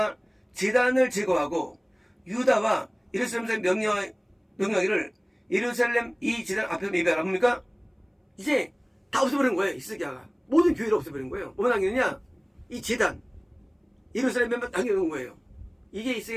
제단을 제거하고, 유다와 예루살렘에 명령하기를, 예루살렘 이 제단 앞에서 예배하라. 뭡니까? 이제 다 없애버린 거예요. 히스기야가. 모든 교회를 없애버린 거예요. 뭐만 남기느냐? 이 제단. 예루살렘에만 남겨놓은 거예요. 이게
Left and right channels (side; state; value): both; identical; correlation 1.00